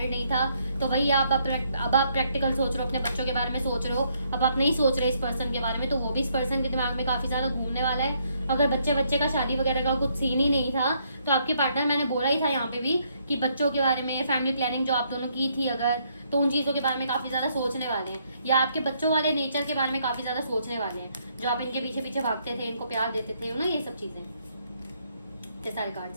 नहीं था, तो वही अब आप प्रैक्टिकल सोच रहे हो, अपने बच्चों के बारे में सोच रहे हो, अब आप नहीं सोच रहे इस पर्सन के बारे में, तो वो भी इस पर्सन के दिमाग में काफी ज्यादा घूमने वाला है। अगर बच्चे का शादी वगैरह का कुछ सीन ही नहीं था तो आपके पार्टनर, मैंने बोला ही था यहाँ पे भी कि बच्चों के बारे में, फैमिली प्लानिंग जो आप दोनों की थी अगर, तो उन चीजों के बारे में काफी ज्यादा सोचने वाले हैं, या आपके बच्चों वाले नेचर के बारे में काफी ज्यादा सोचने वाले हैं, जो आप इनके पीछे पीछे भागते थे, इनको प्यार देते थे ना, ये सब चीजें, ये सारे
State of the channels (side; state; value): both; inverted; correlation -0.71